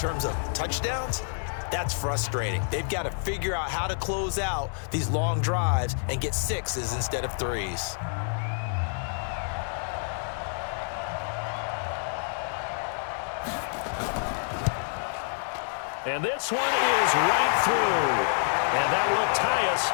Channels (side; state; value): right; silent; 59 dB below the other